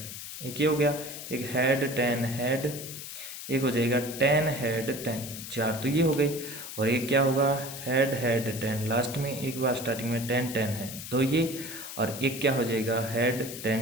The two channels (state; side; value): noise; left; hiss, 10 dB below the sound